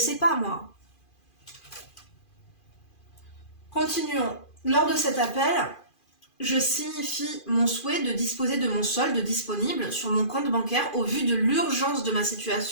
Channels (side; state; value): right; late; 2.4 ms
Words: pas moi. Continuons. Lors de cet appel, je signifie mon souhait de disposer de mon solde disponible sur mon compte bancaire au vu de l'urgence de ma